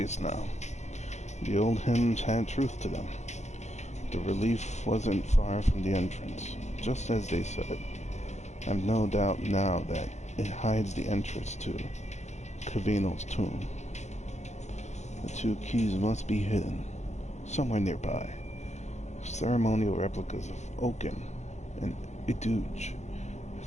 now. The old hymns had truth to them. The relief wasn't far from the entrance, just as they said. I've no doubt now that it hides the entrance to Cavino's tomb. The two keys must be hidden, somewhere nearby. Ceremonial replicas of Oaken and Iduge,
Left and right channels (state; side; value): late; right; 0.33 ms